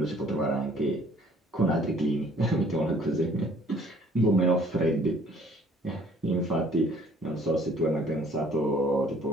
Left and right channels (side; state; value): both; normal; correlation 0.57